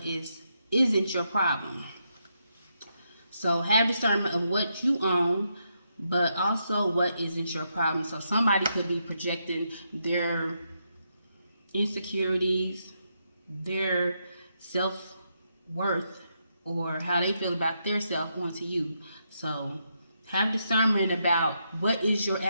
isn't your problem. So have discernment of what you own, but also what isn't your problem. So somebody could be projecting their insecurities, their self-worth, or how they feel about their self onto you. So have discernment about what is your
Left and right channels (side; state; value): both; inverted; correlation -0.81